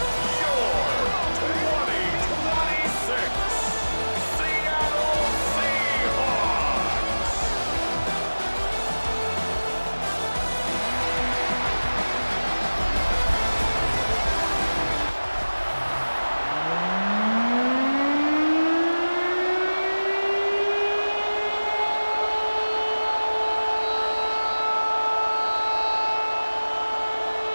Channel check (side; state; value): both; inverted; correlation -1.00